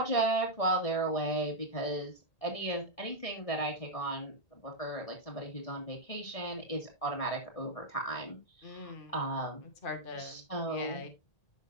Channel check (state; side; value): late; right; 1.6 ms